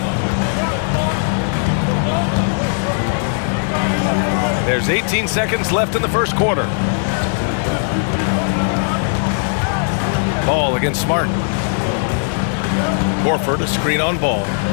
There's 18 seconds left in the first quarter. Ball against Smart. Horford, a screen on Ball.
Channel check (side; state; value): right; silent; digital silence